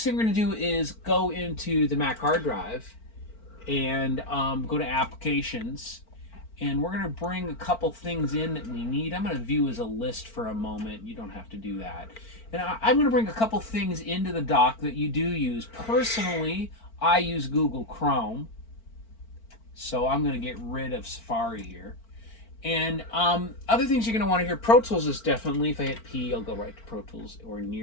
thing we're going to do is go into the Mac hard drive and go to applications, and we're going to bring a couple things in that we need. I'm going to view as a list for a moment. You don't have to do that. And I'm going to bring a couple things into the dock that you do use. Personally, I use Google Chrome, so I'm going to get rid of Safari here. And other things you're going to want to hear, Pro Tools is definitely, if I hit P, I'll go right to Pro Tools or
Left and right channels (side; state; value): right; late; 4.4 ms